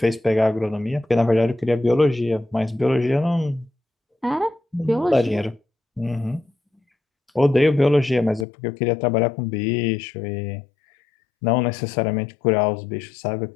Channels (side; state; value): right; drops out; at 8.5 s